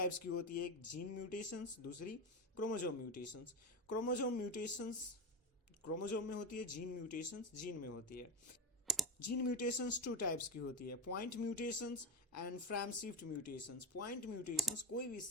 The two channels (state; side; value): normal; both; correlation 0.20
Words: की होती है. एक जीन म्यूटेशंस, दूसरी chromosome mutations. Chromosome mutations chromosome में होती है, जीन म्यूटेशंस जीन में होती है. जीन म्यूटेशंस टू टाइप्स की होती है, point mutations and frame shift mutations. Point mutations कोई भी